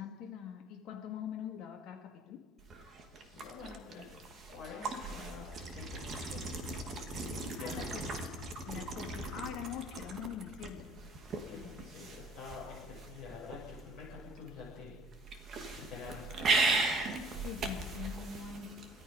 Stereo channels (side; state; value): both; normal; correlation 0.52